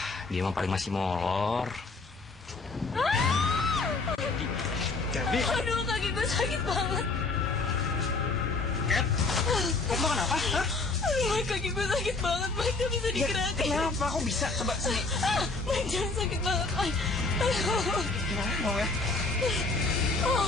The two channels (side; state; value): right; quieter; 3.7 dB